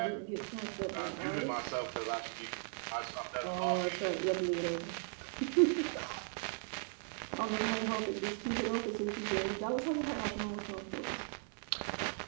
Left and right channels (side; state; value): left; silent; 53 dB below the other